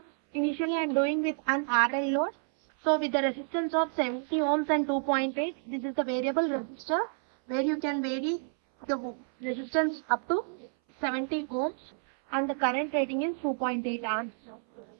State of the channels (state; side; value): silent; left; 58 dB below the other